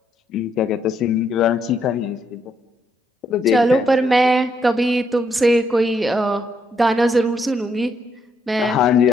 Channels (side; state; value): both; normal; correlation 0.75